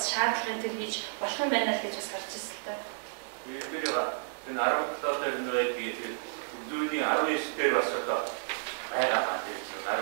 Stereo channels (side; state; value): left; silent; digital silence